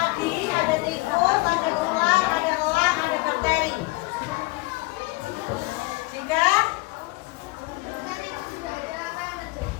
ada tikus, ada ular, ada elang, ada bakteri. Jika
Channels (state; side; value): quieter; right; 23.5 dB